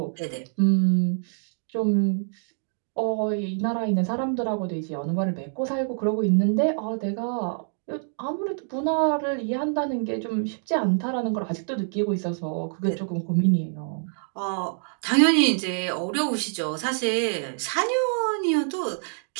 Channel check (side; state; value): left; silent; digital silence